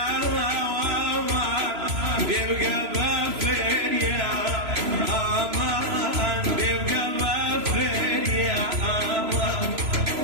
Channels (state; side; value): late; left; 3.0 ms